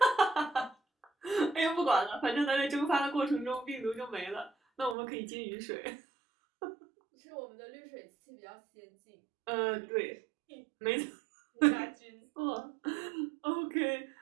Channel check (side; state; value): left; drops out; at 5.0 s